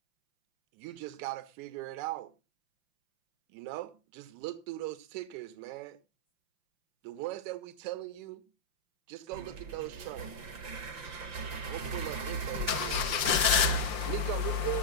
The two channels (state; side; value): late; left; 5.7 ms